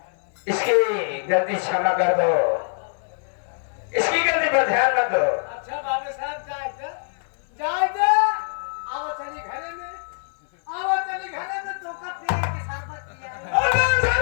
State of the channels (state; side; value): silent; right; 62 dB below the other